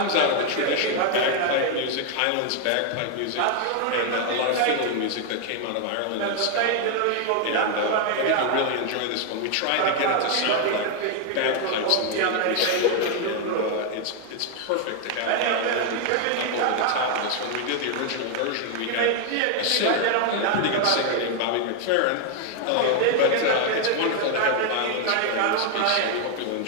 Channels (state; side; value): different; both; correlation 0.00